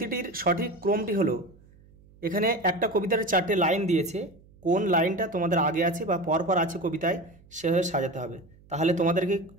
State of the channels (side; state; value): right; noise; hum, 27 dB below the sound